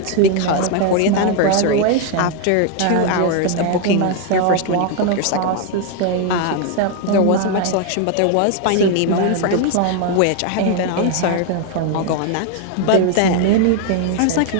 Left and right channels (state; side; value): different; both; correlation 0.01